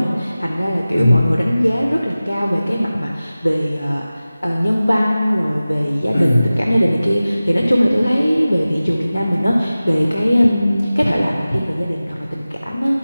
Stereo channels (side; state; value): both; inverted; correlation -0.97